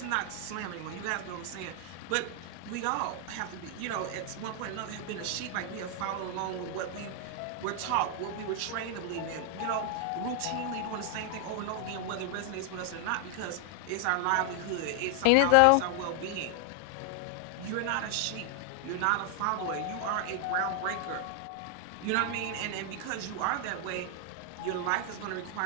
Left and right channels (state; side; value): different; both; correlation 0.00